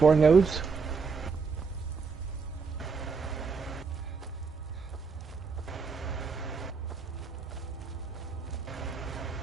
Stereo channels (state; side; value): quieter; left; 5.0 dB